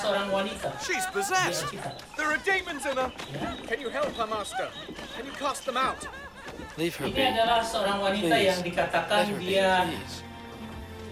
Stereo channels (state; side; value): identical; both; correlation 1.00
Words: wanita. She's possessed. There are demons in her. Can you help her, Master? Can you cast them out? Leave her be. Ini adalah seorang wanita Please. yang dikatakan Let her be, dia please.